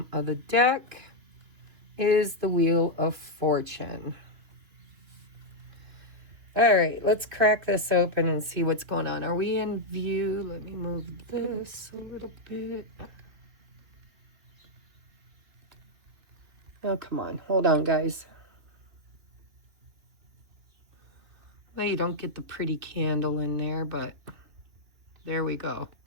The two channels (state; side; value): late; left; 2.9 ms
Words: of the deck is the Wheel of Fortune. All right, let's crack this open and see what's going on. Are we in view? Let me move this a little bit. Oh, come on. Hold on, guys. Well, you don't get the pretty candle in there, but there we go.